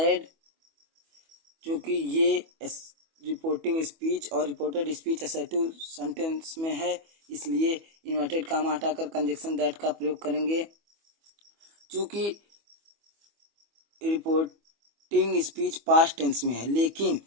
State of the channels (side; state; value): left; late; 25 ms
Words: क्योंकि ये रिपोर्टिंग स्पीच और रिपोर्टेड स्पीच असर्टिव सेंटेंस में है, इसलिए इन्वर्टेड कामा हटाकर कंजक्शन दैट का प्रयोग करेंगे। चूंकि रिपोर्टिंग स्पीच पास्ट टेंस में है, लेकिन